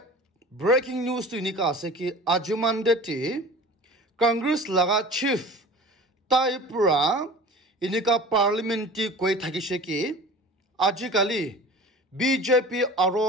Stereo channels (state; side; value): normal; both; correlation 0.39